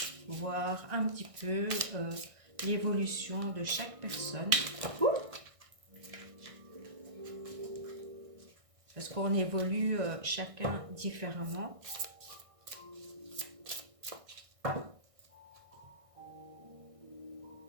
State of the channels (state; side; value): late; left; 1.6 ms